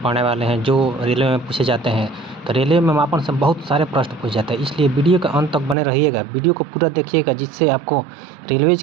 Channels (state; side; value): drops out; left; at 5.8 s